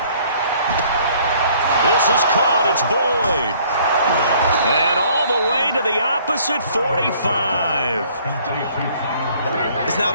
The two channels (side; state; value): both; inverted; correlation -0.59